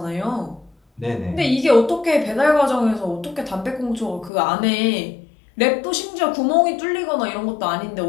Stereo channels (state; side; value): drops out; right; at 4.3 s